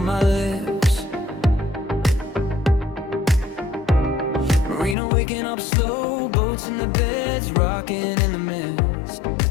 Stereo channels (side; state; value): right; drops out; at 5.0 s